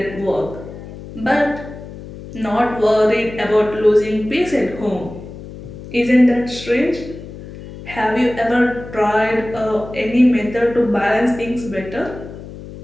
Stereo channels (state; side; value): noise; left; hum, 14 dB below the sound